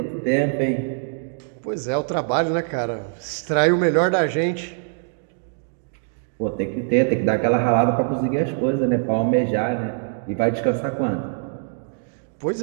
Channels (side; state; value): left; silent; 63 dB below the other